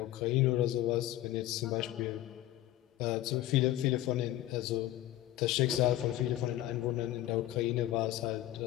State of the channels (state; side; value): quieter; right; 14.4 dB